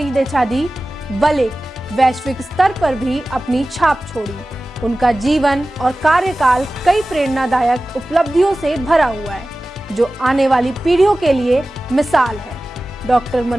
दिशा दी, बल्कि वैश्विक स्तर पर भी अपनी छाप छोड़ी। उनका जीवन और कार्यकाल कई प्रेरणादायक उपलब्धियों से भरा हुआ है, जो आने वाली पीढ़ियों के लिए मिसाल है। डॉक्टर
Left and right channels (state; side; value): normal; both; correlation 0.96